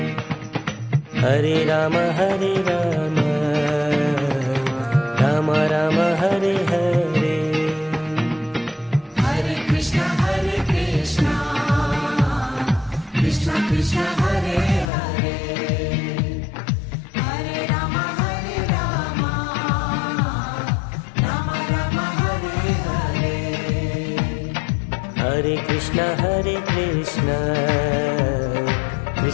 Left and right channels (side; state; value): right; drops out; at 14.9 s